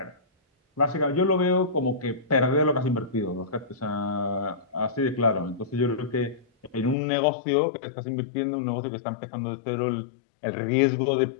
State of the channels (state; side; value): drops out; right; at 7.0 s